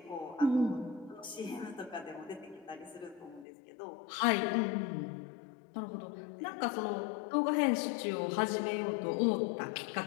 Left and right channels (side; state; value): right; drops out; at 3.5 s